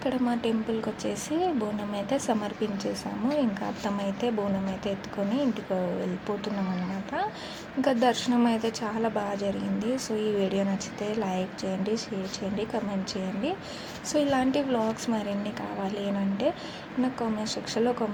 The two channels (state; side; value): identical; both; correlation 1.00